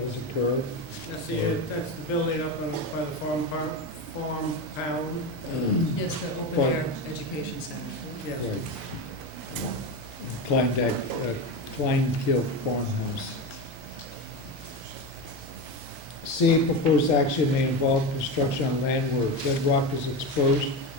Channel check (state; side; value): normal; both; correlation 0.19